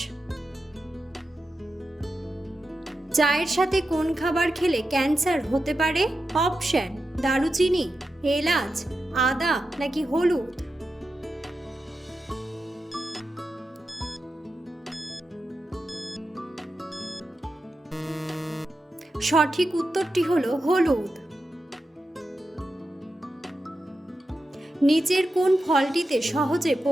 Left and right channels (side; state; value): both; normal; correlation 0.90